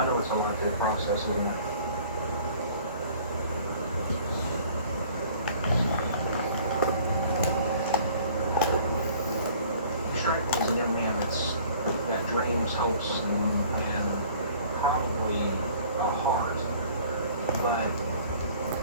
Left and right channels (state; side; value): inverted; both; correlation -0.52